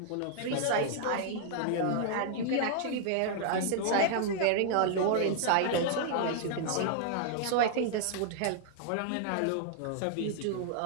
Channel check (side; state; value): both; different; correlation 0.00